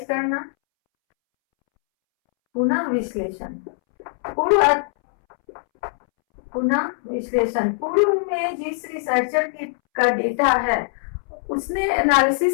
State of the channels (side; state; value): right; silent; 64 dB below the other